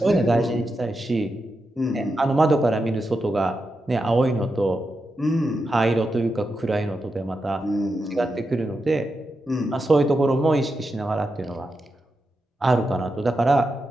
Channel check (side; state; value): both; normal; correlation 0.87